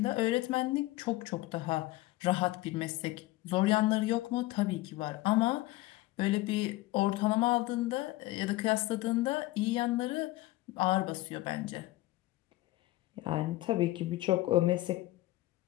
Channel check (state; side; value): quieter; right; 18.3 dB